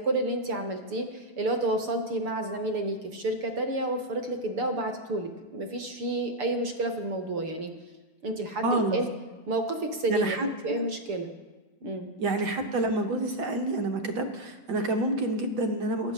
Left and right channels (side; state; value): left; late; 6.9 ms